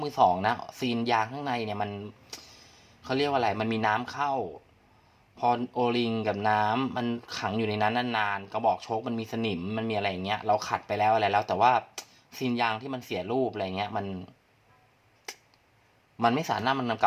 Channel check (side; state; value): both; identical; correlation 1.00